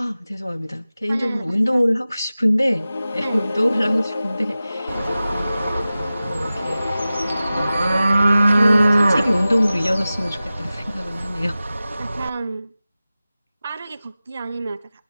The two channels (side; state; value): both; inverted; correlation -0.96